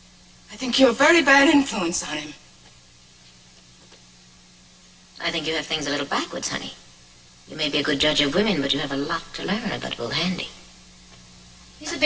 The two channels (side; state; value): both; identical; correlation 1.00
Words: I think you're a very bad influence on him. I think you have things a little backwards, honey. You may be a good judge of women, but you have a lot to learn about Will Handy. He's a